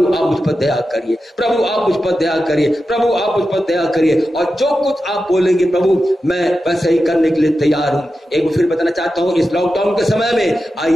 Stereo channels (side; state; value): both; normal; correlation 0.91